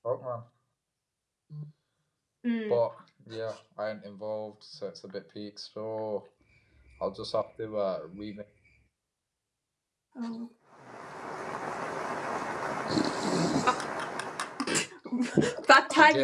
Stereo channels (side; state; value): both; identical; correlation 1.00